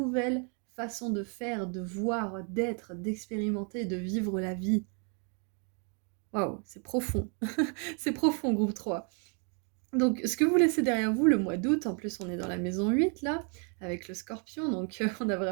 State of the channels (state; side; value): quieter; left; 39.2 dB